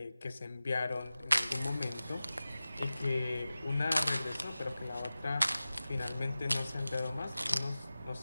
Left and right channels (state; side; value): inverted; both; correlation -0.96